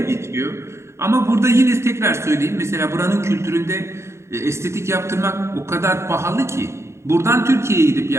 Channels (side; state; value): left; late; 0.13 ms